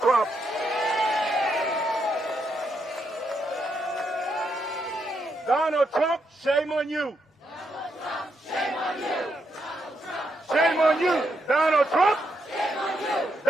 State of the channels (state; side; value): normal; both; correlation 0.80